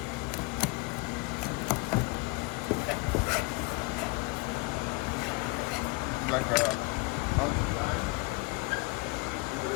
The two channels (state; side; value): quieter; right; 25.9 dB